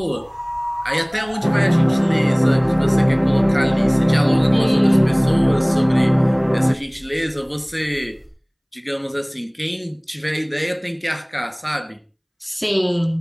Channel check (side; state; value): both; identical; correlation 1.00